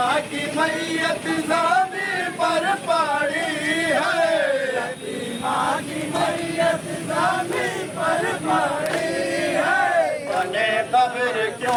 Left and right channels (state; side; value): identical; both; correlation 1.00